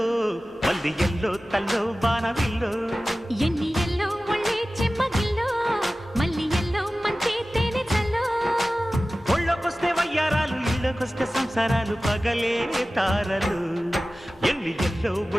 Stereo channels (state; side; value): normal; both; correlation 0.96